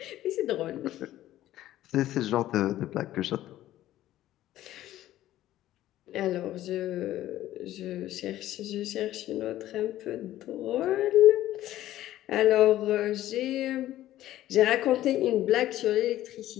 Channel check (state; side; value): quieter; right; 14.0 dB